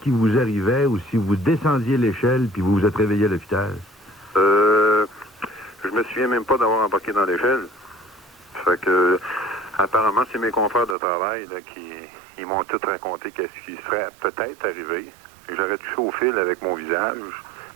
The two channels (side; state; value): left; drops out; at 11.0 s